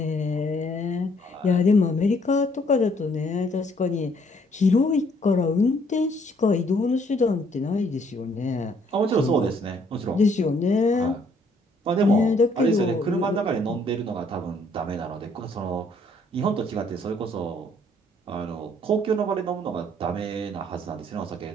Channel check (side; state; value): both; normal; correlation 0.65